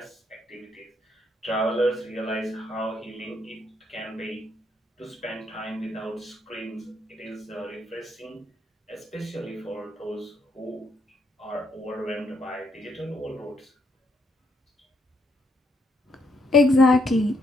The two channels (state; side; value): normal; both; correlation 0.74